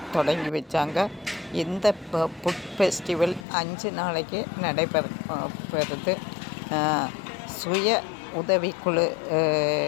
தொடங்கி வச்சாங்க. இந்த ஃபுட் ஃபெஸ்டிவல் 5 நாளைக்கு நடைபெறுது. சுய உதவிக்குழு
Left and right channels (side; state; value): right; drops out; at 3.5 s